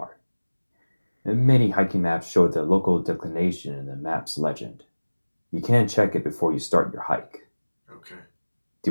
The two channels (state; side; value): inverted; both; correlation -1.00